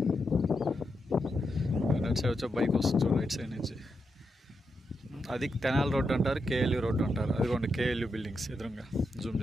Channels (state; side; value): normal; both; correlation 0.85